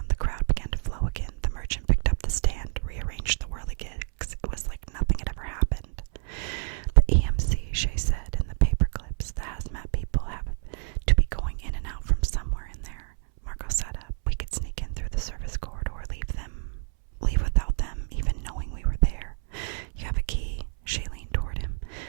the crowd began to flow again. The merchant picked up the stand, rearranged the whirligigs. It was like nothing had ever happened. The EMC, Shay said, in the paper clips. The hazmat people have to be going in and out from somewhere in there. Marco sat up. We could sneak in through the service corridor, leave without them even knowing we were there. You have a key? Shay leaned toward him.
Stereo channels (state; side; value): silent; left; 59 dB below the other